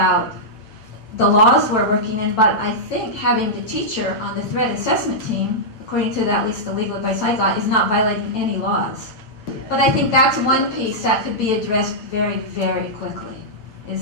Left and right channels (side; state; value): right; late; 9.0 ms